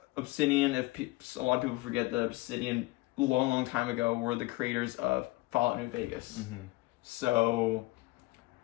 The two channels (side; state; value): right; quieter; 20.9 dB